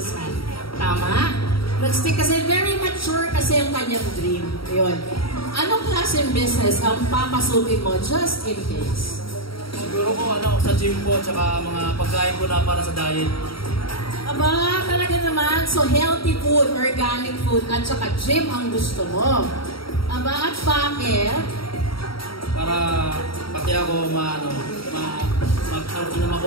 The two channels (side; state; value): right; late; 0.74 ms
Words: Tama? Nag-stick kasi, very mature kasi ang kanyang dream. Yun. Anong klaseng business ang papasukin mo just in case? Siguro ko sa gym po, tsaka mga pagkain ko na para sa diet. Aba, talaga naman. So, healthy food, organic food, at saka gym ang gusto mo. Aba, at bakit? Para pati ako